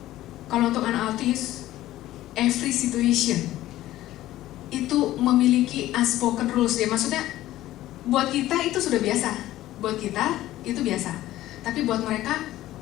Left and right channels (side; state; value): right; quieter; 14.9 dB